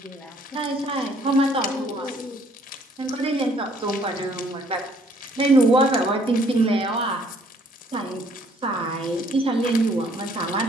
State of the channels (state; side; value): normal; both; correlation 0.62